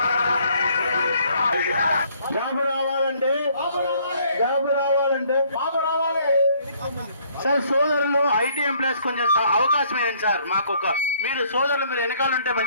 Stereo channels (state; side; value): inverted; both; correlation -0.63